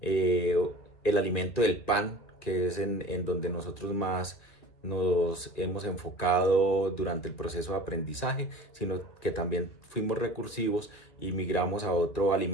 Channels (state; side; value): late; right; 2.7 ms